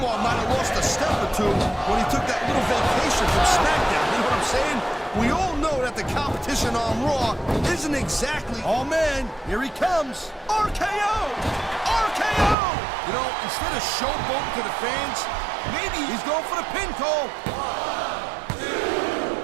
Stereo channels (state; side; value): drops out; left; at 12.6 s